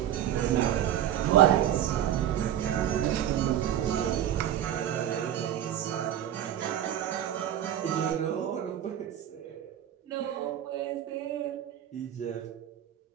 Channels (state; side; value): quieter; left; 11.0 dB